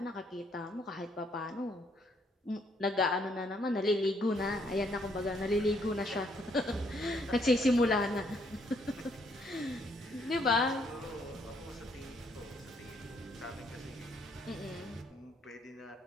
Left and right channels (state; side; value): normal; both; correlation 0.70